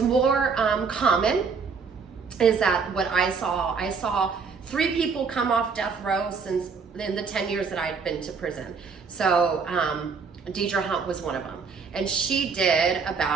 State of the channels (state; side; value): quieter; left; 5.3 dB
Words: more common is that what I saw 3 people come off death row since in the 10 years that I'd been to prison. So Deirdre Hunt was one of them, and she did